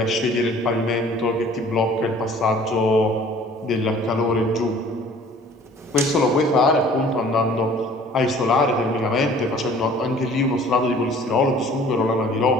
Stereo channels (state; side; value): normal; both; correlation 0.51